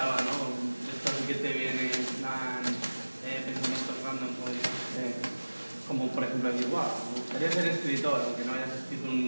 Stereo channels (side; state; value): both; inverted; correlation -1.00